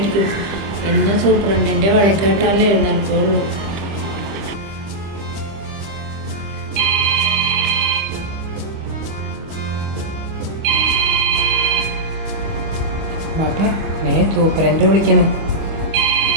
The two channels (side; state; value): left; late; 25 ms